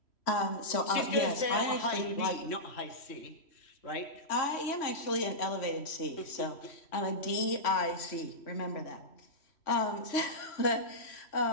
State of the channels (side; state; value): right; late; 3.1 ms